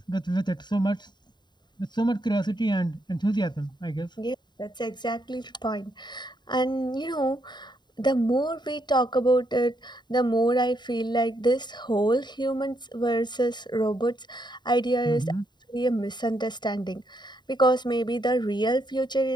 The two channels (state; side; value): late; right; 0.21 ms